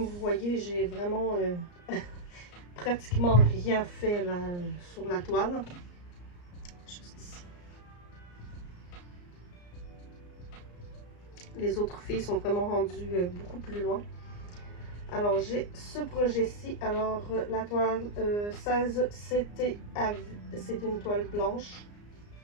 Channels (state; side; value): late; right; 34 ms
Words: vous voyez, j'ai vraiment pratiquement rien fait là, sur la toile. Juste ici. Les autres filles sont vraiment rendues beaucoup plus loin. Alors, j'ai ce projet-ci. Alors, la toile 16, c'était une toile blanche.